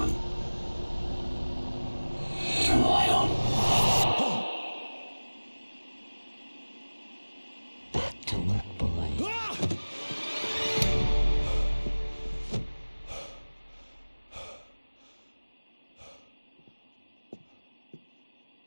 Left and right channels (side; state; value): both; inverted; correlation -1.00